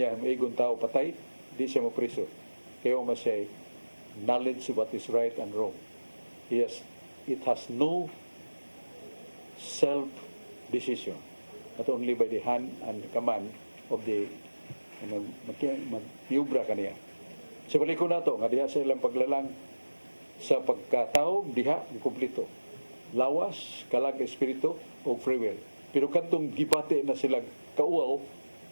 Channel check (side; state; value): both; inverted; correlation -1.00